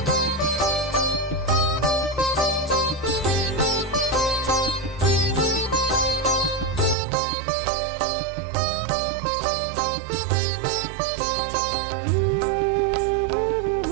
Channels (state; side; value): drops out; left; at 7.0 s